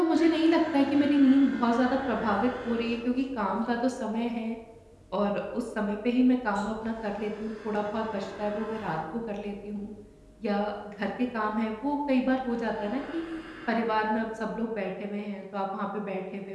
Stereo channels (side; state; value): both; identical; correlation 1.00